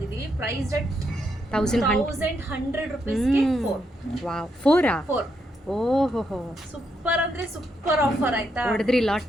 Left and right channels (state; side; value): normal; both; correlation 0.79